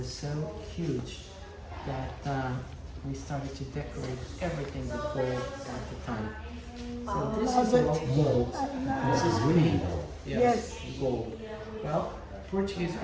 so huge that we started to decorate everything with gold at the time. So this is all gold. This is green. Yes, gold. Well, Portuguese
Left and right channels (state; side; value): identical; both; correlation 1.00